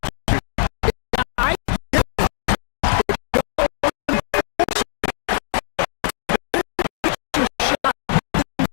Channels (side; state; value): right; silent; 64 dB below the other